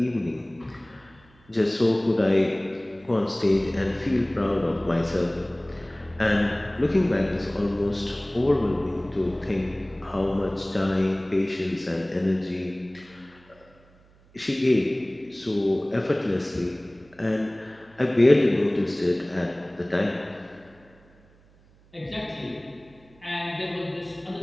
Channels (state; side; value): noise; right; hum, 29 dB below the sound